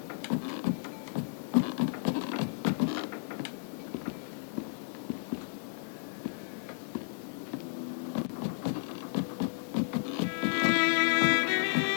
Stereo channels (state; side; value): silent; right; digital silence